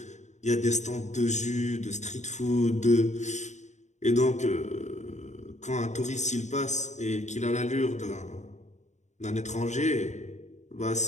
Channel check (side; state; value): right; late; 0.34 ms